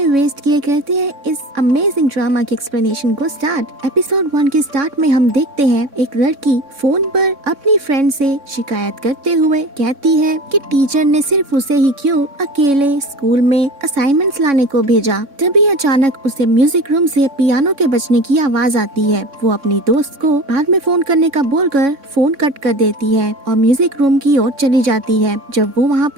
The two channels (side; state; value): left; late; 3.6 ms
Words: वेस्ट किए करते हैं इस अमेजिंग ड्रामा की एक्सप्लेनेशन को स्टार्ट। एपिसोड 1 के स्टार्ट में हम देखते हैं एक लड़की फोन पर अपनी फ्रेंड से शिकायत करते हुए कहती है कि टीचर ने सिर्फ उसे ही क्यों अकेले स्कूल में असाइनमेंट्स लाने को भेजा। तभी अचानक उसे म्यूजिक रूम से पियानो के बजने की आवाज आती है। वो अपनी दोस्त को बाद में फोन करने का बोलकर फोन कट कर देती है और म्यूजिक रूम की ओर चली जाती है। जब वो वहाँ